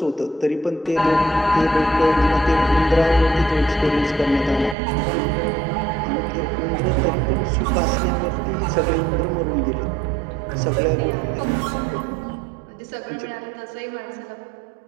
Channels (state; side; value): drops out; left; at 4.8 s